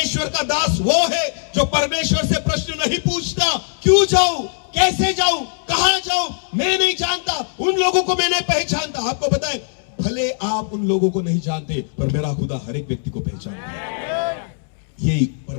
का दास वो है जो परमेश्वर से प्रश्न नहीं पूछता, क्यों जाऊं, कैसे जाऊं, कहां जाऊं, मैं नहीं जानता, उन लोगों को मैं नहीं पहचानता। आपको पता है, भले आप उन लोगों को नहीं जानते, पर मेरा खुदा हर एक व्यक्ति को पहचानता है। ये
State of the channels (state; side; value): silent; right; 66 dB below the other